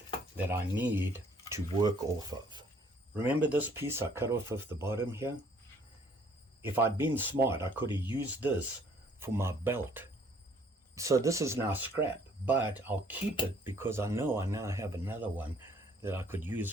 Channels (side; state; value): both; normal; correlation 0.60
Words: that I need to work off of. Remember this piece I cut off of the bottom here? If I'd been smart, I could have used this for my belt. So this is now scrap, but I'll keep it because I know I now have another one that I could